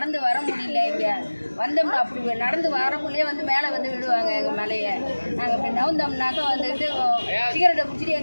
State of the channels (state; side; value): inverted; both; correlation -1.00